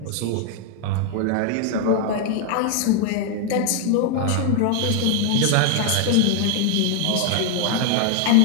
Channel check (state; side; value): different; both; correlation 0.00